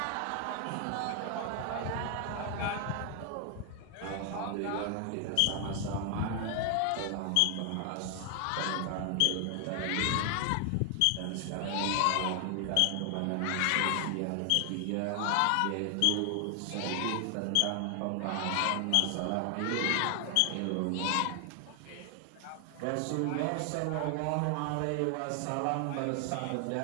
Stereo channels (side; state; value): both; different; correlation 0.00